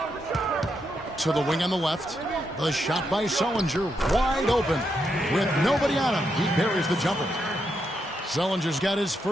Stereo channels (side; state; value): both; normal; correlation 0.81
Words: To the wing on the left. The shot by Sullinger, wide open. With nobody on him, he buries the jumper. Sullinger's got his